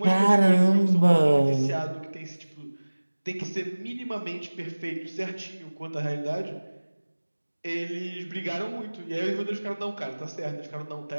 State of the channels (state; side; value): inverted; both; correlation -1.00